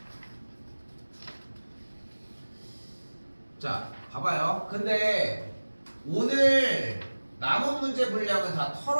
자, 봐봐요. 근데 오늘 남은 문제 분량은 다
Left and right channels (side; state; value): both; inverted; correlation -1.00